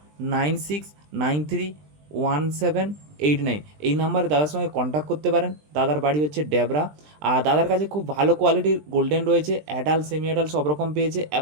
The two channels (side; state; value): left; late; 20 ms